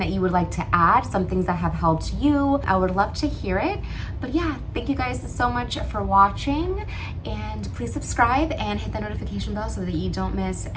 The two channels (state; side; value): identical; both; correlation 1.00